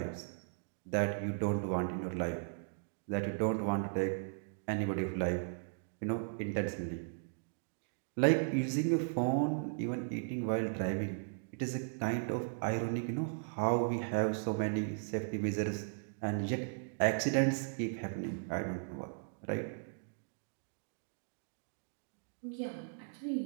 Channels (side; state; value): left; silent; digital silence